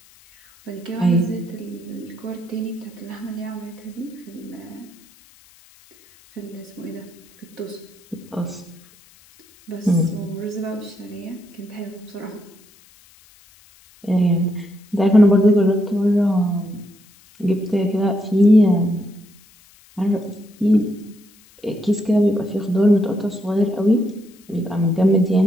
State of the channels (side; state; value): left; noise; hiss, 28 dB below the sound